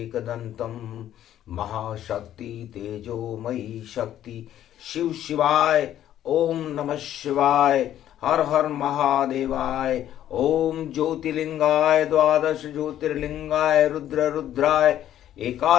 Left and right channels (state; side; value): quieter; right; 11.6 dB